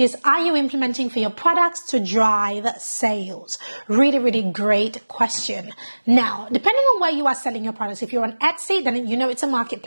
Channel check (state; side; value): inverted; both; correlation -1.00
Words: are you implementing for your products to drive sales? Really great question. Now, depending on where you are selling your products, if you're on Etsy, then you know it's a